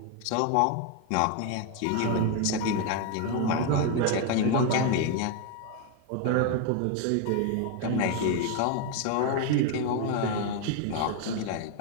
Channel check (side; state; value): both; different; correlation 0.01